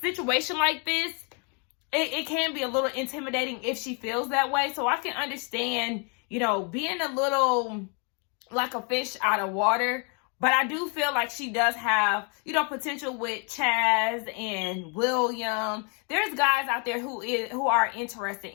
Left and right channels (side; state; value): right; quieter; 36.3 dB